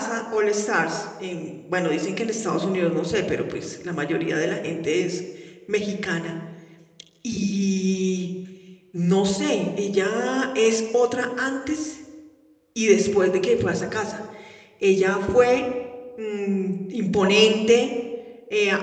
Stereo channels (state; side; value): identical; both; correlation 1.00